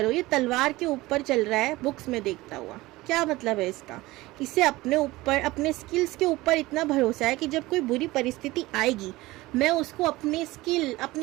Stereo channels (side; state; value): left; quieter; 19.4 dB